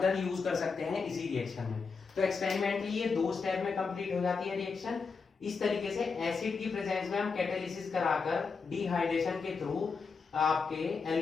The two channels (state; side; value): quieter; right; 5.0 dB